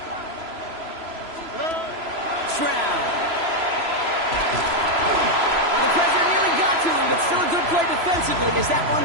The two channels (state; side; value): late; left; 3.0 ms